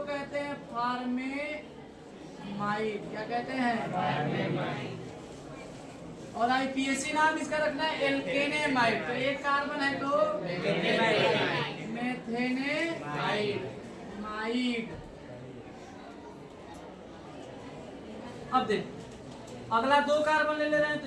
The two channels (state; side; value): identical; both; correlation 1.00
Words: कहते हैं फॉर्मेमाइड। क्या कहते हैं, फॉर्मेमाइड। और IPAC नाम इसका रखना है एल्केनेमाइड। तो एक कार्बन है तो मेथेनेमाइड। अब देख, अगला 2 कार्बन ले रहे हैं तो